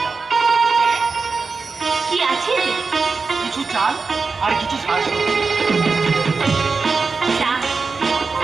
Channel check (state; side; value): quieter; left; 4.5 dB